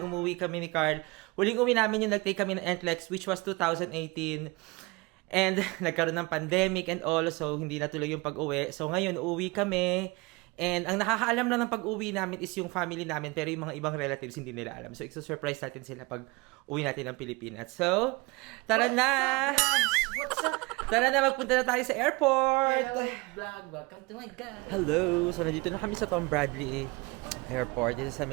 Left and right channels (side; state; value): left; quieter; 24.9 dB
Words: kami ni Carl. Huling uwi namin yung nag-take kami ng NCLEX, which was 2018. And nagkaroon ng pandemic and all, so hindi natuloy yung pag-uwi. So ngayon, uuwi kami. And ang nakakaalam lang ng pag-uwi namin is yung family namin, pero yung mga ibang relatives hindi nila alam. So i-surprise natin sila pag uwi natin ng Pilipinas. So, tara na! Tara na, magpunta na tayo sa airport! Hello, vlog. Welcome to my God. Hello! So, nandito na kami sa Tom Bradley Airport. Dito sa